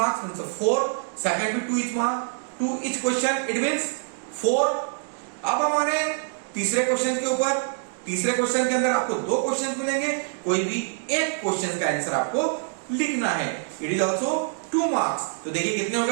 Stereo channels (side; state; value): left; silent; 62 dB below the other